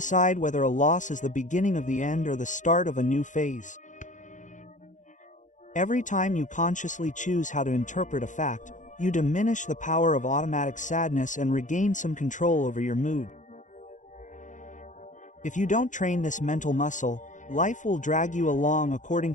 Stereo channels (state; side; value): late; right; 0.36 ms